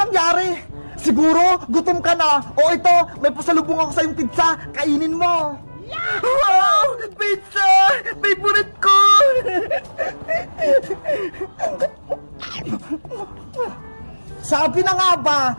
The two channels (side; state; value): both; inverted; correlation -1.00